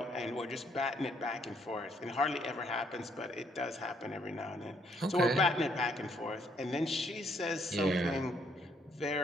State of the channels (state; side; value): normal; both; correlation 0.70